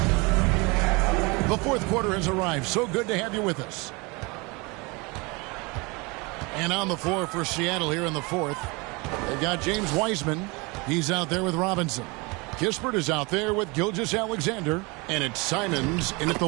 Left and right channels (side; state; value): left; quieter; 27.1 dB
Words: The fourth quarter has arrived. So good to have you with us. And on the floor for Seattle here in the fourth, they've got James Wiseman. He's out there with Robinson. Kispert is out there with Gilgeous-Alexander. And it's Simons in at the